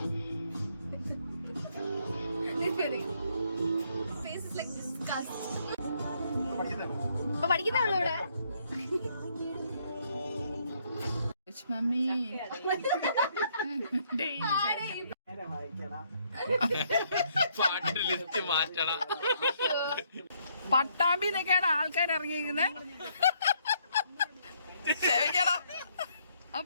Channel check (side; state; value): both; inverted; correlation -0.70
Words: പഠിക്കുന്നുള്ളൂ ഇവിടെ. മമ്മി പട്ടാമ്പിന്നൊക്കെയാണ് ആൾക്കാർ ഇറങ്ങിയിരിക്കുന്നത്.